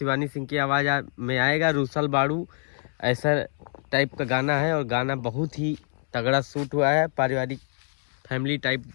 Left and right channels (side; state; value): right; silent; 61 dB below the other